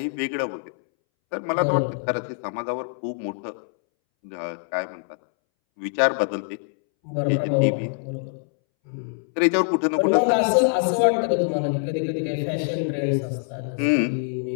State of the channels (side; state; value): right; silent; 62 dB below the other